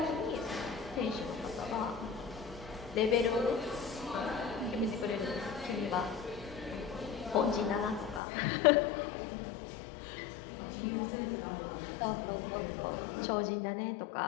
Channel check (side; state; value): right; drops out; at 8.2 s